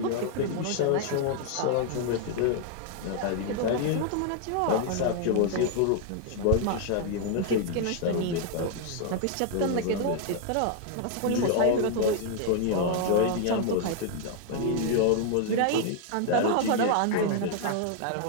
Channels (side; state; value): both; different; correlation 0.00